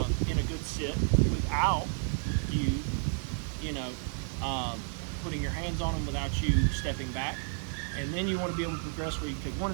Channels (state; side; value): silent; left; 57 dB below the other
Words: a good sit without you putting your hands on him, without you stepping back. And then you want to be able to progress where you take 1 or